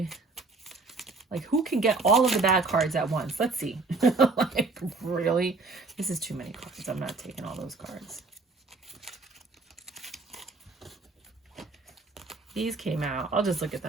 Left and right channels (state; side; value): quieter; left; 3.7 dB